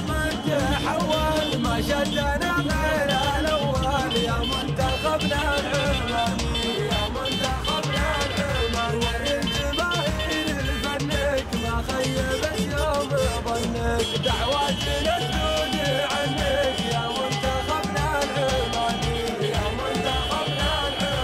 من تحول، ما شدنا غير الاول يا منتخبنا العماني، يا منتخبنا العماني. وريت جماهير فنك ما خيبت يوم ظنك، دعواتنا تدود عنك يا منتخبنا العماني، يا منتخبنا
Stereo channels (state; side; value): identical; both; correlation 1.00